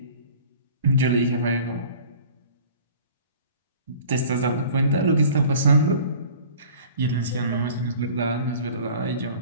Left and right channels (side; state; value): both; inverted; correlation -0.46